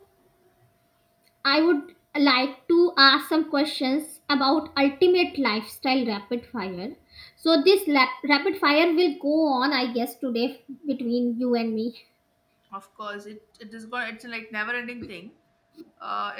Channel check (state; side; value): identical; both; correlation 1.00